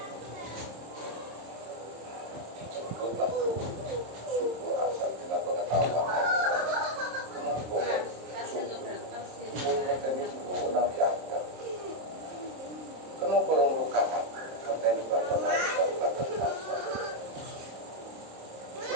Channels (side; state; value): left; late; 26 ms